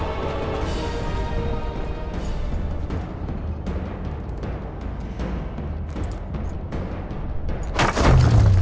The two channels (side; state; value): both; identical; correlation 1.00